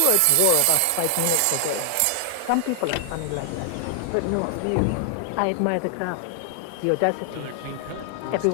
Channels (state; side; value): different; both; correlation 0.00